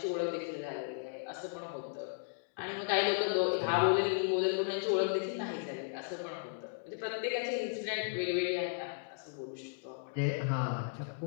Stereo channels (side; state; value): right; silent; digital silence